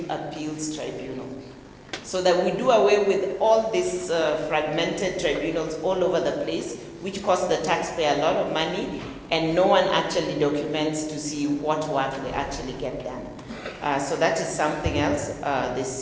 Appeals Tribunal so that we do away with all these fragmented tribunals all over the place, which cost the taxpayer a lot of money, and no one actually documents to see what work they actually get done. So that is something else they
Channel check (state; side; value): identical; both; correlation 1.00